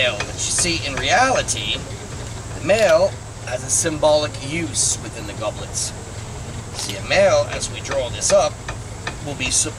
but you see, in reality, the male has a symbolic use within the goblets. See, a male, as we draw this up, will be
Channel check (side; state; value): both; identical; correlation 1.00